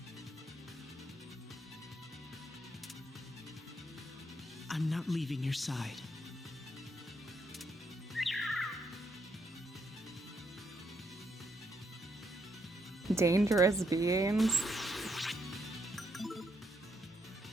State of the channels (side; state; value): both; normal; correlation 0.77